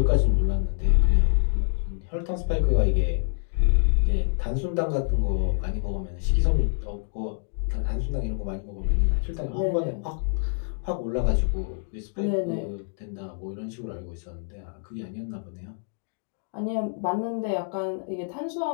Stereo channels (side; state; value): right; silent; digital silence